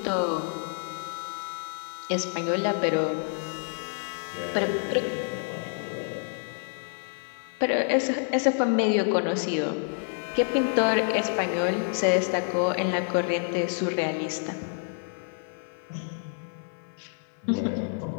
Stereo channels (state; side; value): silent; right; 59 dB below the other